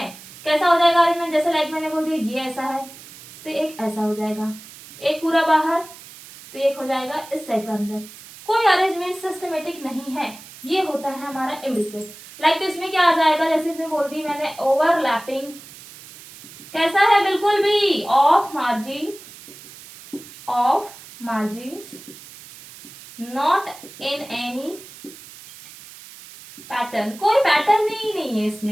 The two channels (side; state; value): right; noise; hiss, 18 dB below the sound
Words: कैसा हो जाएगा अरेंजमेंट, जैसे लाइक मैंने बोल दिया ये ऐसा है तो एक ऐसा हो जाएगा, एक पूरा बाहर तो एक हो जाएगा इस टाइप का अंदर, कोई अरेंजमेंट सिस्टमेटिक नहीं है, ये होता है हमारा इम्ब्रिकेट। लाइक तो इसमें क्या आ जाएगा, जैसे इसमें बोल दी मैंने ओवरलैपिंग, कैसा है बिल्कुल भी of margins not in any pattern, कोई पैटर्न ही नहीं है